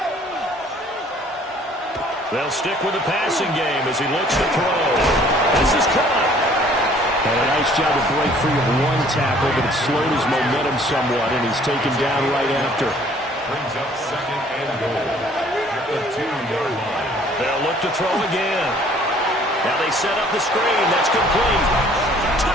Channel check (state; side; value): normal; both; correlation 0.56